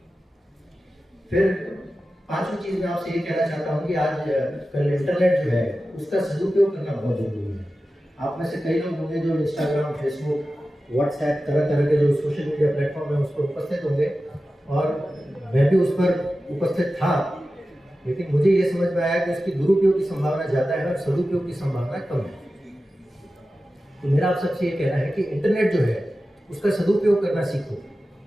फिर 5वीं चीज मैं आपसे ये कहना चाहता हूँ कि आज कल इंटरनेट जो है उसका सदुपयोग करना बहुत जरूरी है। आप में से कई लोग होंगे जो इंस्टाग्राम, फेसबुक, व्हाट्सएप, तरह तरह के जो सोशल मीडिया प्लेटफॉर्म है उस पर उपस्थित होंगे और मैं भी उस पर उपस्थित था, लेकिन मुझे ये समझ में आया कि उसकी दुरुपयोग की संभावना ज़्यादा है और सदुपयोग की संभावना कम है। तो मेरा आप सबसे ये कहना है कि इंटरनेट जो है उसका सदुपयोग करना सीखो।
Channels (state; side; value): normal; both; correlation 0.94